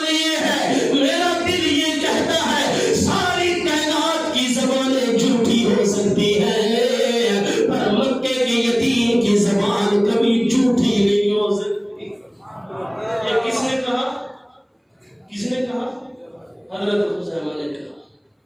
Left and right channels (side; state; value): both; identical; correlation 1.00